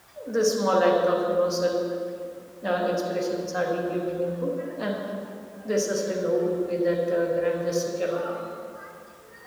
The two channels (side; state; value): both; identical; correlation 1.00